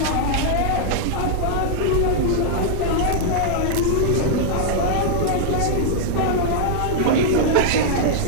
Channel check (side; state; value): both; different; correlation -0.01